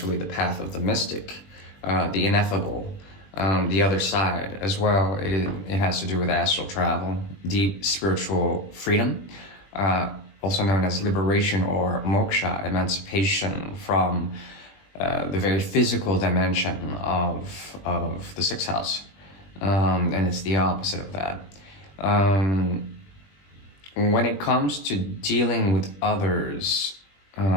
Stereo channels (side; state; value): right; late; 20 ms